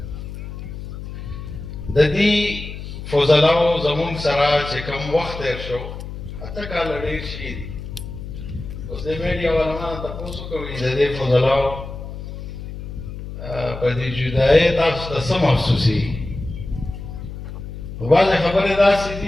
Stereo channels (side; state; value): left; noise; hum, 9 dB below the sound